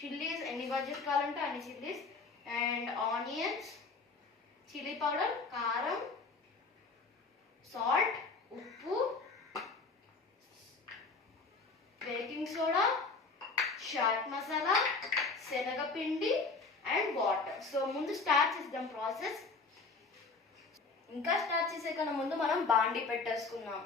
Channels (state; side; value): quieter; right; 4.1 dB